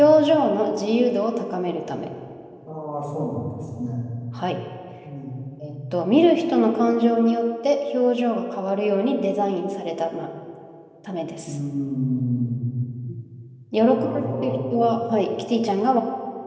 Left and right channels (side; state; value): both; identical; correlation 1.00